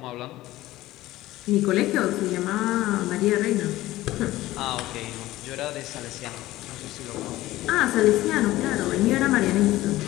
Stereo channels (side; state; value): right; quieter; 16.6 dB